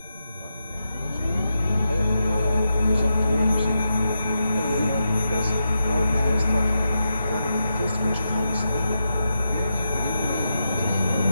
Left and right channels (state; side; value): inverted; both; correlation -0.86